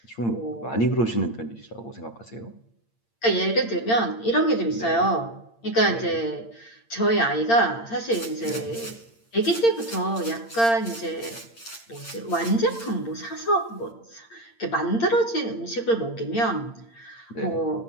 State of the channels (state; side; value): late; right; 8.7 ms